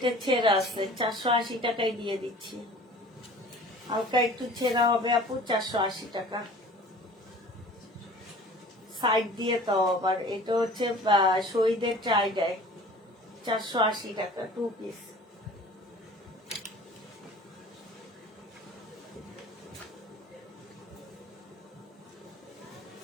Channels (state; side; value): normal; both; correlation 0.45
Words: ছেঁড়া আছে, 480 টাকায় দিয়ে দিচ্ছি। হালকা একটু ছেঁড়া হবে আপু, 480 টাকা। সাইড দিয়ে তাও আবার। এটা হচ্ছে শহীদের ট্রাই ডাই, 480 টাকা 2 পিস।